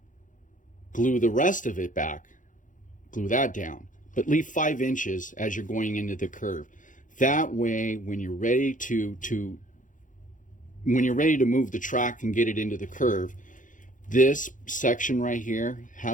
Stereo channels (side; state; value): right; late; 0.38 ms